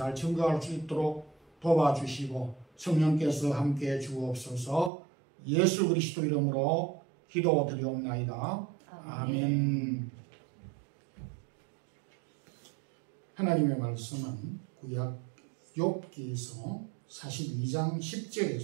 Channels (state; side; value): drops out; left; at 4.9 s